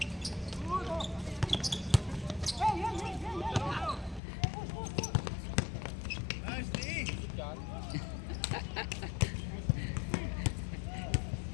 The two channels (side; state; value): right; drops out; at 4.2 s